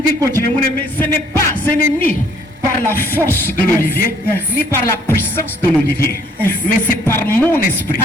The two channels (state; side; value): normal; both; correlation 0.62